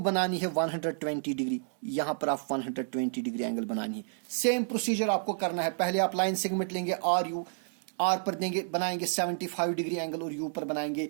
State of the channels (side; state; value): left; silent; digital silence